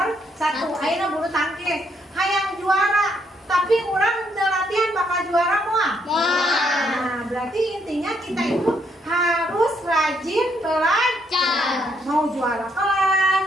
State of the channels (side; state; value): both; normal; correlation 0.73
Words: 1. Akhirnya bulu tangkis, hayang juara, tapi orang latihan bakal juara semua. Nah, berarti intinya kita itu harus rajin belajar. Mau juara kelas,